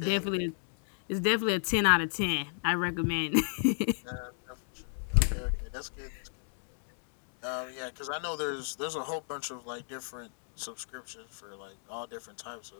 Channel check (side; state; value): right; silent; digital silence